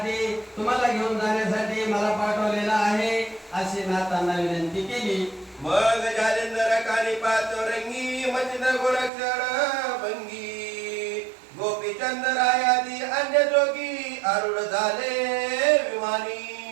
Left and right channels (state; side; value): drops out; left; at 9.1 s